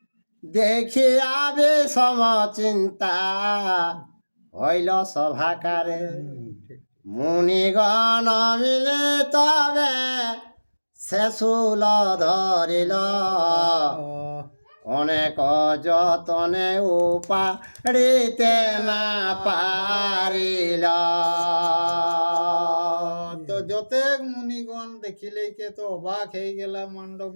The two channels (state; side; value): inverted; both; correlation -1.00